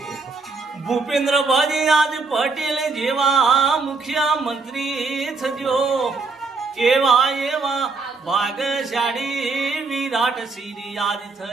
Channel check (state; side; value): quieter; left; 4.1 dB